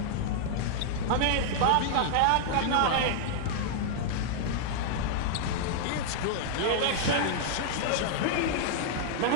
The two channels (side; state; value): both; different; correlation -0.01